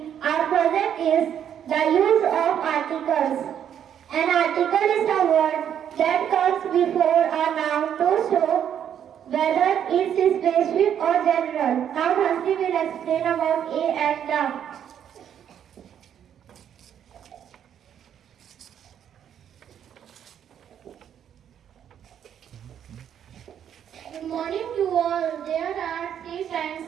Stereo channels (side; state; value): left; quieter; 9.3 dB